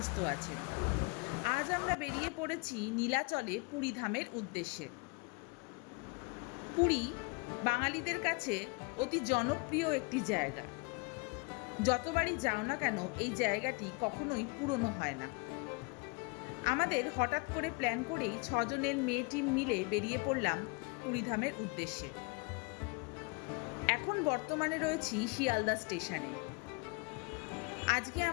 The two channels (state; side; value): quieter; right; 29.2 dB